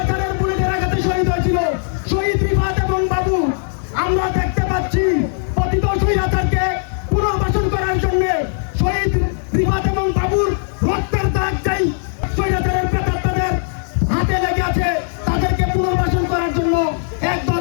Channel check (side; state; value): right; silent; digital silence